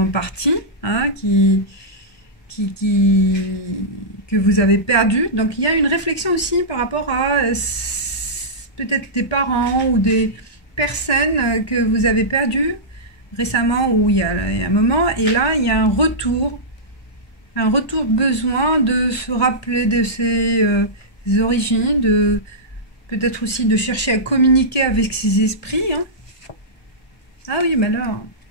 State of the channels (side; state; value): right; late; 1.2 ms